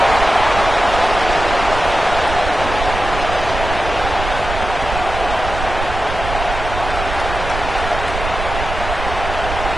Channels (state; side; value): noise; right; rumble, 7 dB below the sound